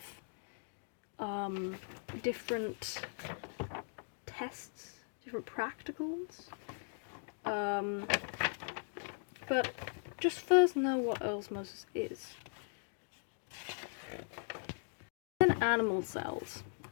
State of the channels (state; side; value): silent; right; digital silence